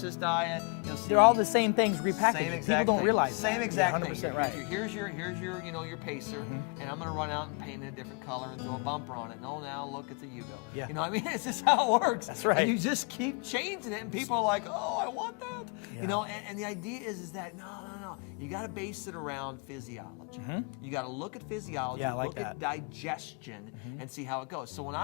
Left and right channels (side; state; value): right; quieter; 35.0 dB